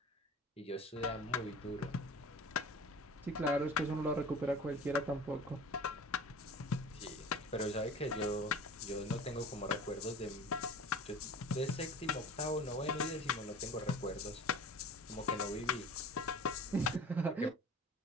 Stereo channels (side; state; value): both; normal; correlation 0.40